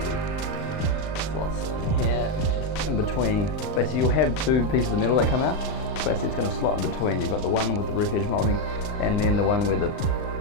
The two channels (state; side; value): late; right; 39 ms